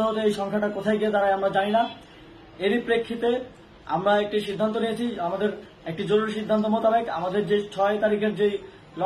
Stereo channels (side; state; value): both; identical; correlation 1.00